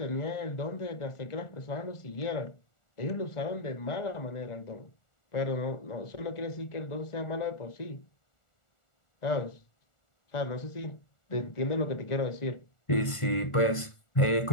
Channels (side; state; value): right; late; 1.4 ms